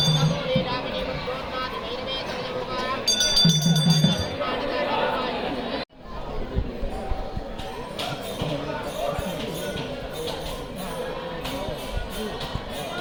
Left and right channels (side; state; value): both; identical; correlation 1.00